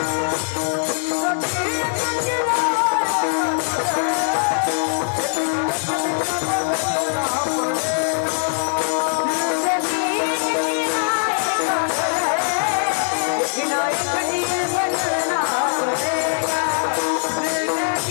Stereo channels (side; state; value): right; silent; digital silence